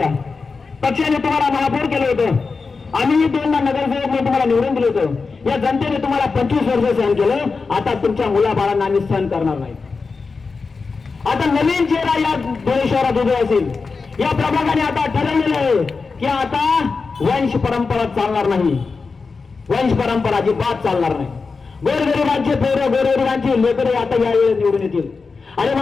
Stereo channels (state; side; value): quieter; right; 4.6 dB